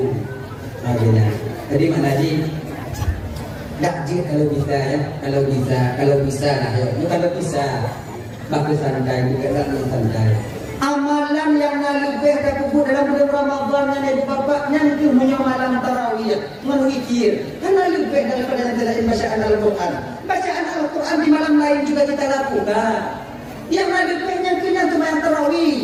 Makanya. Jadi mana di? Dakjir kalau bisa ya, kalau bisa lah ya. Kalau bisa, bagus santai juga dalam santai. Amalan yang lebih terkubur dalam bulan Ramadan yang bapaknya itu punya malam tarawih menukir karena lebih daripada yang tidak bacaan Al-Quran. Bacaan Al-Quran di malam lain juga kita lakukan. Yang lebihnya kena itu malam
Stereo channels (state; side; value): identical; both; correlation 1.00